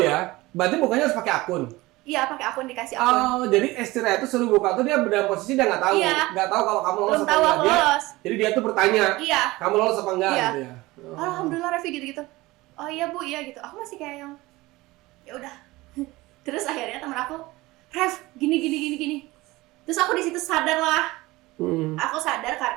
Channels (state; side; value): quieter; left; 20.1 dB